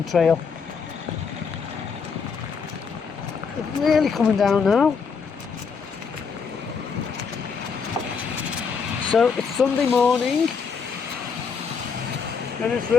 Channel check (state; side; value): quieter; right; 5.7 dB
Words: Trail. It's really coming down now. So it's Sunday morning and it's